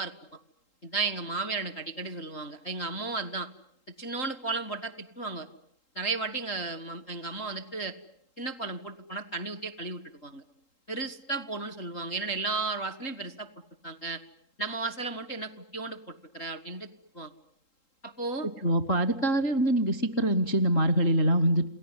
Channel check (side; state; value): right; late; 3.8 ms